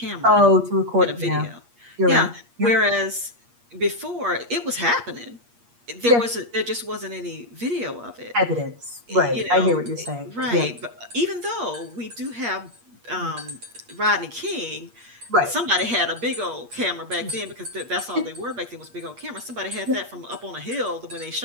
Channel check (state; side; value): late; left; 8.5 ms